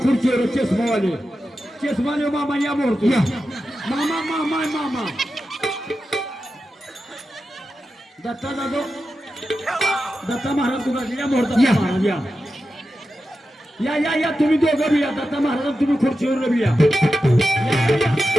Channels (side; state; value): both; normal; correlation 0.91